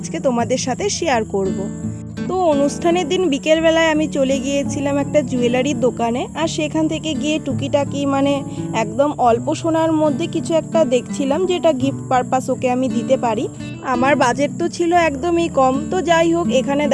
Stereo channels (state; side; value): identical; both; correlation 1.00